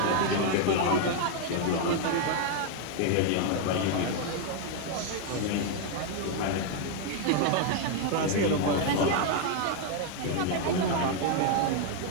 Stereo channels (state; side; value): different; both; correlation 0.00